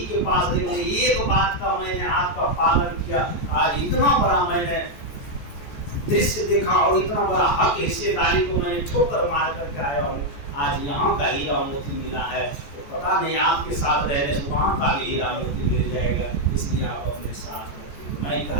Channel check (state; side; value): late; right; 14 ms